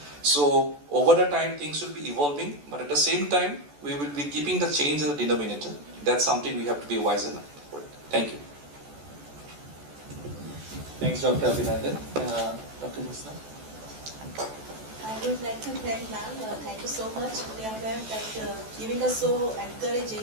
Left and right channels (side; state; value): left; late; 14 ms